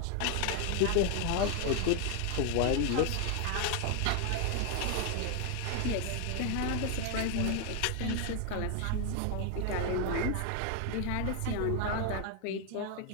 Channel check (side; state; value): both; different; correlation 0.01